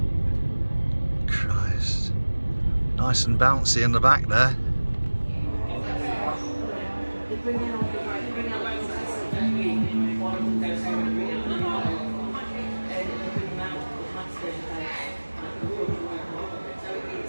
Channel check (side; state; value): both; inverted; correlation -1.00